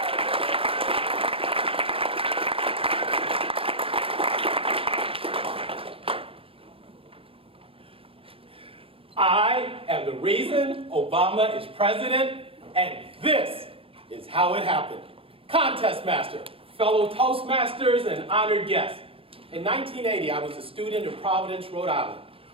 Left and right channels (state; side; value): late; left; 0.27 ms